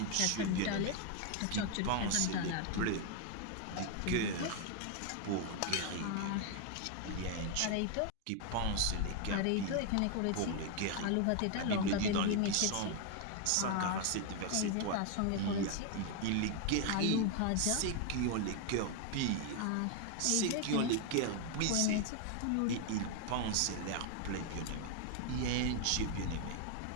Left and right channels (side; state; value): both; different; correlation 0.00